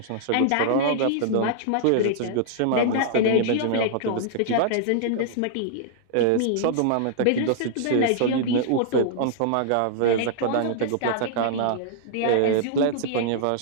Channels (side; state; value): both; different; correlation -0.01